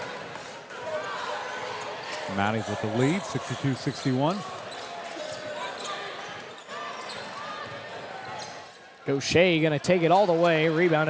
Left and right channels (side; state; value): both; identical; correlation 1.00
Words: Mounties with the lead, 62-61. Gaucher going to take it all the way,